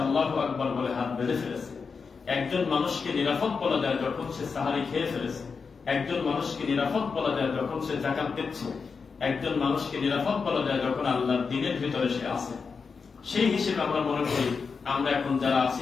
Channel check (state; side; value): quieter; right; 5.2 dB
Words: আল্লাহু আকবার বলে হাত বেঁধে ফেলেছে। একজন মানুষকে নিরাপদ বলা যায় যখন সে সাহারি খেয়ে ফেলেছে। একজন মানুষকে নিরাপদ বলা যায় যখন সে যাকাত দিচ্ছে। একজন মানুষকে নিরাপদ বলা যায় যখন আল্লাহর দ্বীনের ভিতরে সে আছে। সেই হিসেবে আমরা মনে করি আমরা এখন যারা আছি